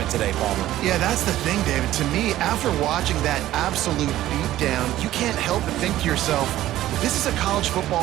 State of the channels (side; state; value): left; quieter; 14.2 dB